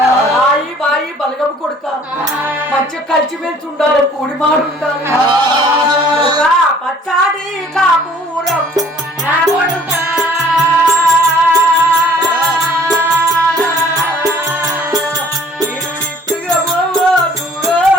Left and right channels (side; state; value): both; normal; correlation 0.55